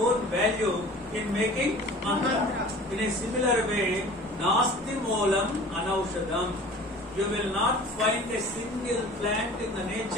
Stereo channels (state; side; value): normal; both; correlation 0.43